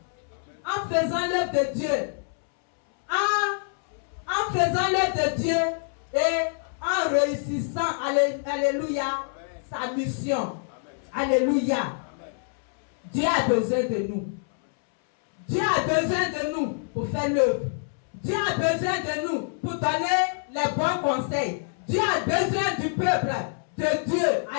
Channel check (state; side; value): silent; right; 61 dB below the other